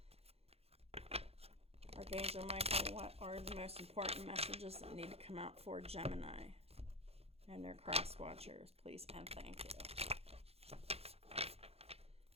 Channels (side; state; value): left; late; 0.29 ms